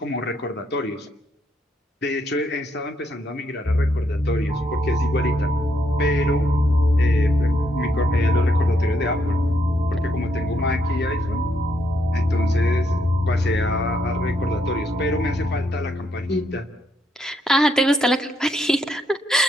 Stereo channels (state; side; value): normal; both; correlation 0.75